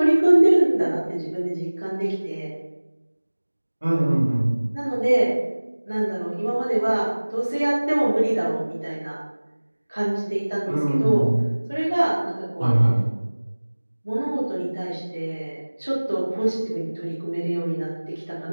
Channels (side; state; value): both; inverted; correlation -1.00